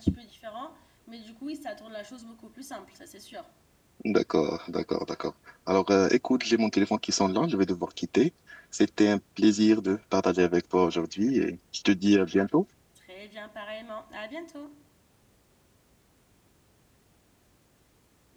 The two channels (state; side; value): identical; both; correlation 1.00